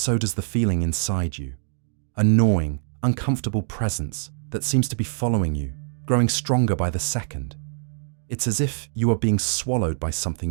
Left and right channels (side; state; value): left; silent; digital silence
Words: does the feeling inside you, a gnawing, uncomfortable presence that seems to be following you, growing stronger by the second. It's as if you are being swallowed by